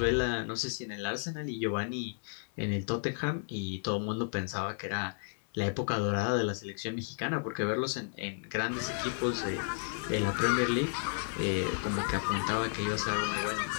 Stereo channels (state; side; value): silent; right; digital silence